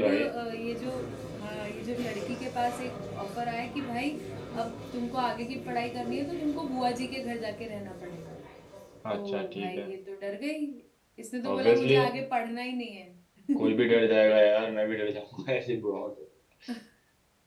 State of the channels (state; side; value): identical; both; correlation 1.00